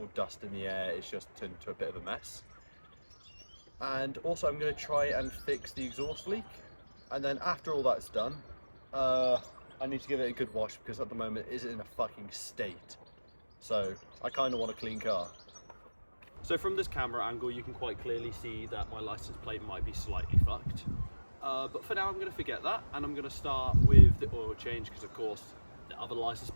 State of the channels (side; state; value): both; inverted; correlation -1.00